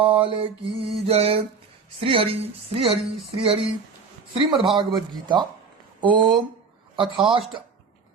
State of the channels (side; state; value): left; quieter; 5.2 dB